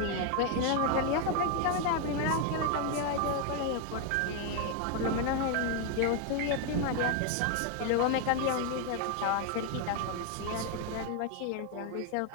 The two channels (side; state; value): both; different; correlation 0.01